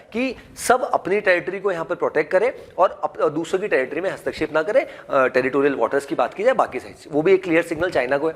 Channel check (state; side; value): identical; both; correlation 1.00